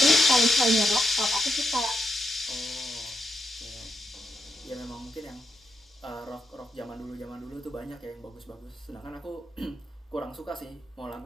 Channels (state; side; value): normal; both; correlation 0.83